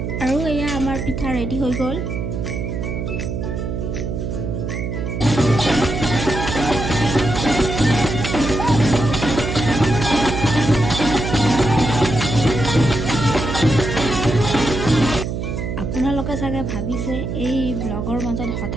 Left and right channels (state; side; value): noise; right; hum, 3 dB below the sound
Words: আৰু এয়া আমাৰ পিঠা ৰেডি হৈ গ'ল। আপোনালোকে চাগে ভাবিছে এই ব্লগৰ মাজত